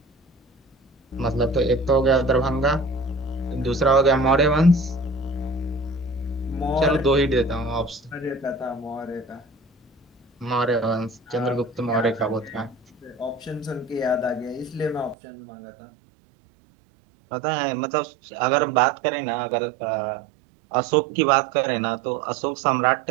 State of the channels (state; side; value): drops out; left; at 15.2 s